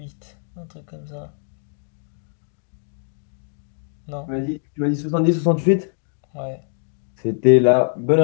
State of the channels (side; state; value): right; silent; digital silence